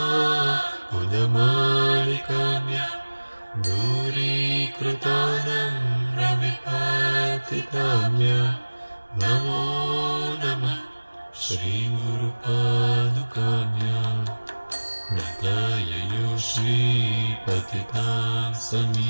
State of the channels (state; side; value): inverted; both; correlation -1.00